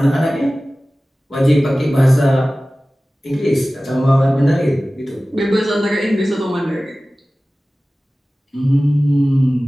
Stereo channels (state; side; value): normal; both; correlation 0.97